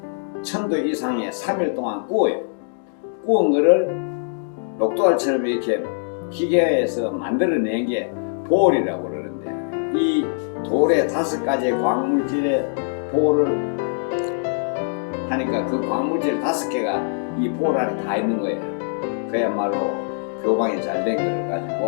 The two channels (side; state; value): right; silent; digital silence